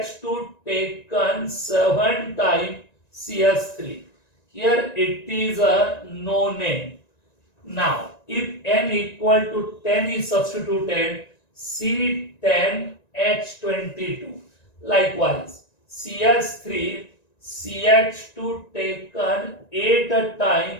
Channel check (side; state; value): right; late; 1.9 ms